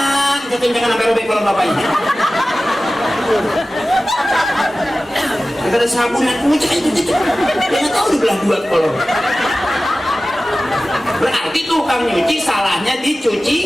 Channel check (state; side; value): normal; both; correlation 0.96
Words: Jangan sampai robek kalau bapaknya. Ada sabun yang kucing itu, dia nggak tahu dibelah dua kolor. Berarti tukang nyuci salahnya